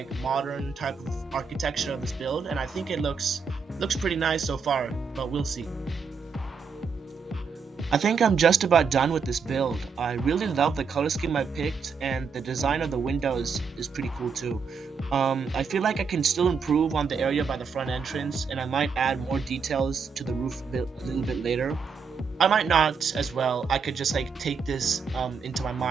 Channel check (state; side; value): quieter; left; 5.5 dB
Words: modern type of architecture of this build, and I think it looks pretty nice so far, but we'll see. I think I'm just about done with this build. I really love the color scheme I picked, and the design of the windows is pretty cool too. I feel like I can still improve on the area by the front entrance, and I might add more details to the roof a little bit later. I might not as well. I could just like take this into my